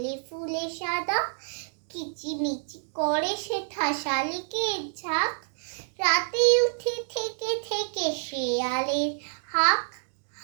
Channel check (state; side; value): silent; left; digital silence